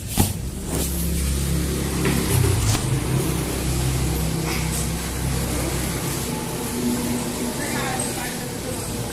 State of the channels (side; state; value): both; identical; correlation 1.00